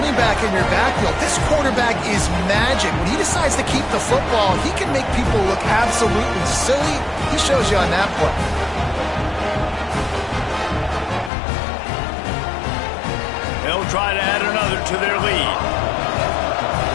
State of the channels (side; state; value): right; drops out; at 11.3 s